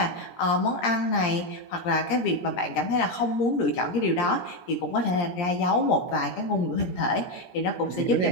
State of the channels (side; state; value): right; late; 17 ms